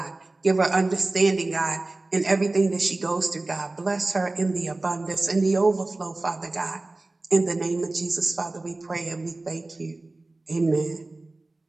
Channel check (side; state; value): left; quieter; 3.1 dB